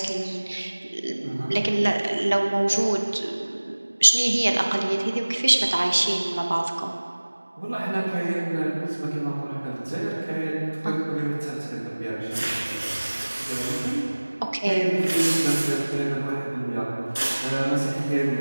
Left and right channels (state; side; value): inverted; both; correlation -1.00